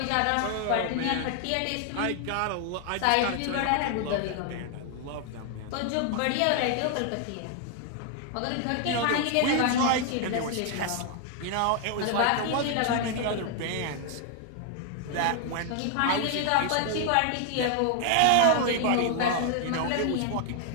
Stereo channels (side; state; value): both; different; correlation 0.00